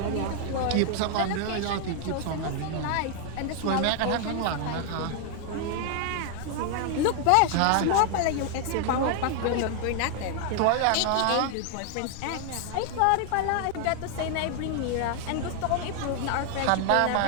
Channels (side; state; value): both; different; correlation 0.00